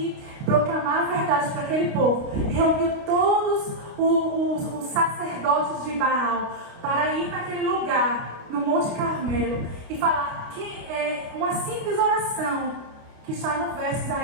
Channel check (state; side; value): late; left; 29 ms